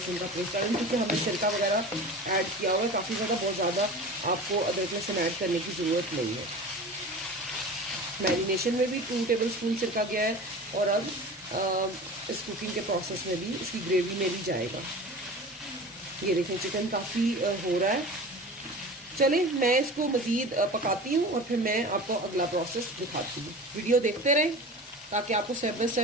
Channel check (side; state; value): both; normal; correlation 0.35